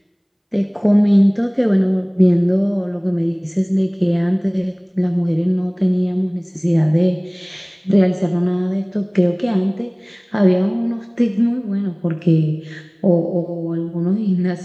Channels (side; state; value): both; identical; correlation 1.00